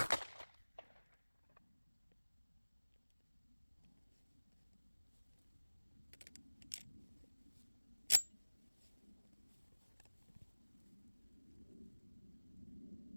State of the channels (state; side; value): inverted; both; correlation -1.00